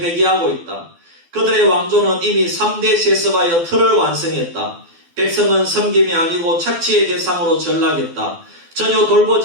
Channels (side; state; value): left; late; 12 ms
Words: 있다. 그들의 왕조는 이미 3대 세습하여 틀을 완성했다. 백성은 섬김이 아니고 착취의 대상으로 전락했다. 전혀